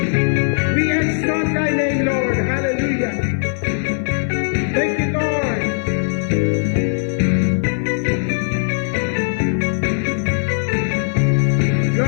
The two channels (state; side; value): silent; right; 58 dB below the other